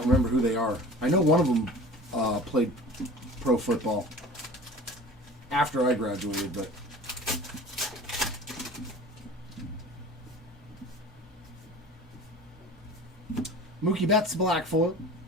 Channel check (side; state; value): both; normal; correlation 0.40